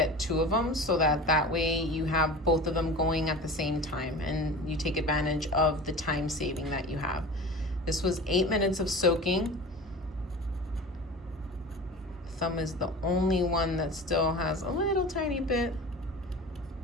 2 of them, so that way you have both of them going at the same time and you take advantage of the time saving that you have. This was 8 minutes of soaking. Thumb is the only one that still has a little tiny bit.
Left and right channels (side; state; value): both; normal; correlation 0.35